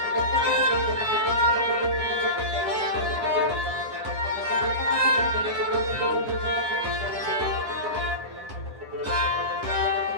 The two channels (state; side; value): late; left; 9.8 ms